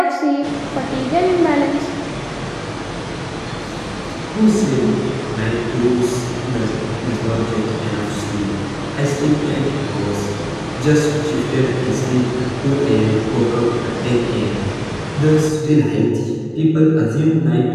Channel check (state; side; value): identical; both; correlation 1.00